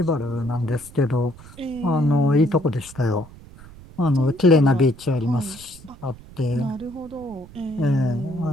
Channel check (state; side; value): noise; right; rumble, 20 dB below the sound